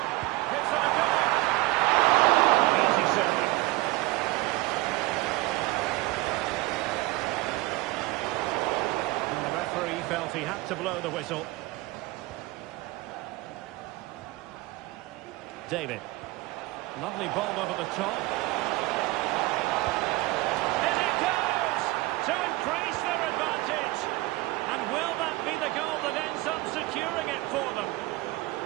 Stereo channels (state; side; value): quieter; left; 20.5 dB